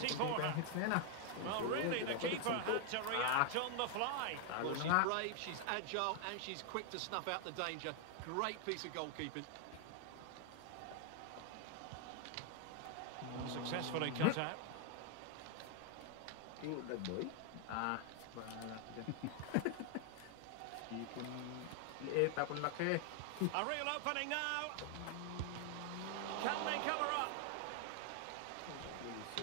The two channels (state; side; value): different; both; correlation 0.00